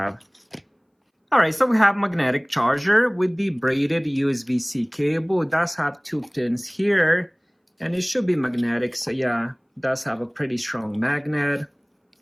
Alright, so we have magnetic charger with the braided USB-C cable. It does have 2 pins here, and it should be magnetic, so yeah, it does have a pretty strong magnet.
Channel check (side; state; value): both; identical; correlation 1.00